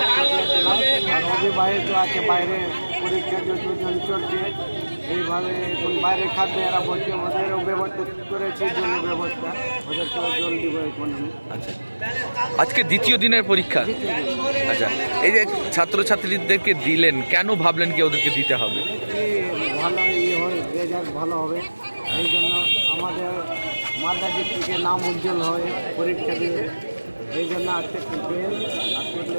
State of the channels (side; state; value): both; inverted; correlation -1.00